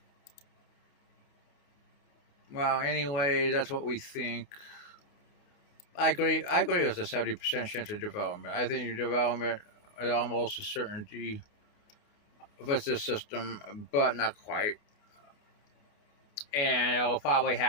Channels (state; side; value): late; right; 29 ms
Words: well, anyway, that's what we think. I agree with a 70% chance of development. I think your development is almost a certainty with this system, but not quite. And it will probably